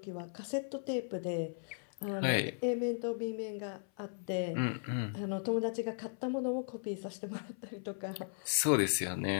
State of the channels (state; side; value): silent; right; 53 dB below the other